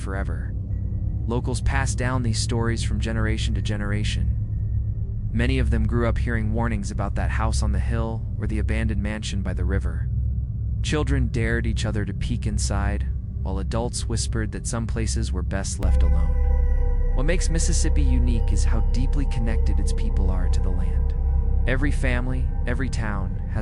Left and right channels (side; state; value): both; identical; correlation 1.00